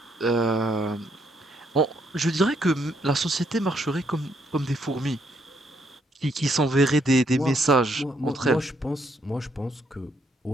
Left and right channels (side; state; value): both; normal; correlation 0.73